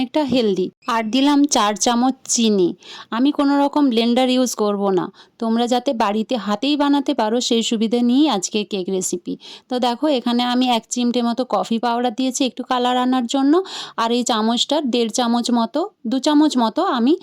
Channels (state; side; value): identical; both; correlation 1.00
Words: হেলদি। আর দিলাম 4 চামচ চিনি। আমি কোনো রকম ব্লেন্ডার ইউজ করব না। তোমরা যাতে বাড়িতে হাতেই বানাতে পারো সেই সুবিধে নিয়েই আজকে কেক রেসিপি। তো দেখো এখানে আমি 1 চিমটে মতো কফি পাউডার দিয়েছি একটু কালার আনার জন্য। আর এই চামচটার 1.5 চামচ মতো 2 চামচ মতো আমি